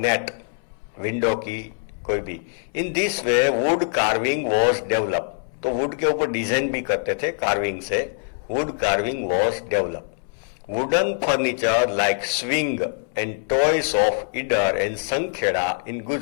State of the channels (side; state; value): right; silent; 62 dB below the other